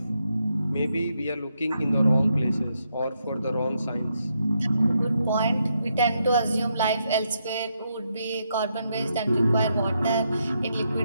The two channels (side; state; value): both; inverted; correlation -0.80